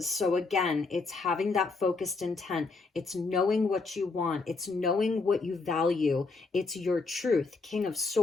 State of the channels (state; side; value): quieter; right; 4.0 dB